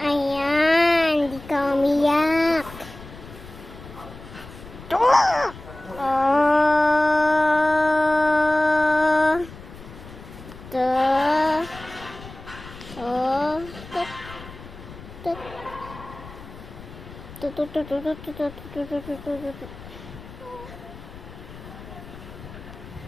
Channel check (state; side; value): noise; left; rumble, 16 dB below the sound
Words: Ayan, di ka umiyak.